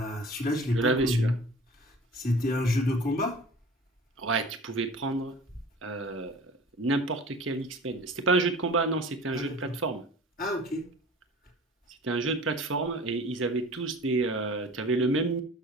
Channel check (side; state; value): both; normal; correlation 0.42